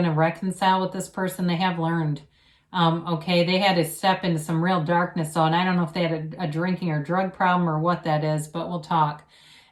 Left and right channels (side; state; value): both; identical; correlation 1.00